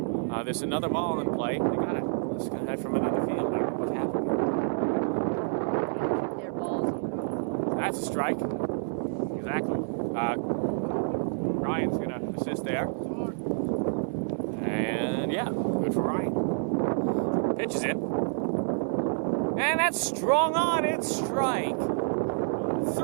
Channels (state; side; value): silent; left; 59 dB below the other